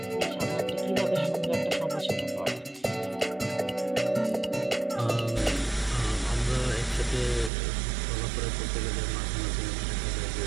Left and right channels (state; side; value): drops out; left; at 7.5 s